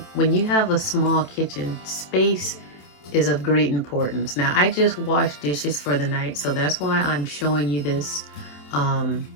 when you have a small kitchen, space is of great importance. Now, I just washed dishes for the night, so that's why I'm showing you this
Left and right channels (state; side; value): late; right; 27 ms